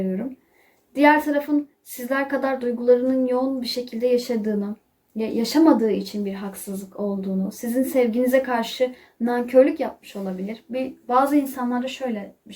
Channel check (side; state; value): both; identical; correlation 1.00